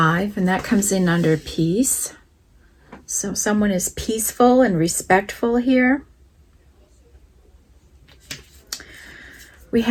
and that comes in under peace. So someone is peaceful and respectful here. We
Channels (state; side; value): identical; both; correlation 1.00